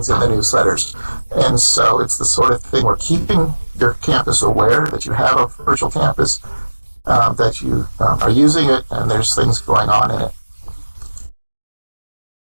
in the newsletters. And so it's the sort of thing we're keeping your campus aware that you have a virtual campus, that you are using it and there's things going on in it.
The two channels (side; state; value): both; inverted; correlation -1.00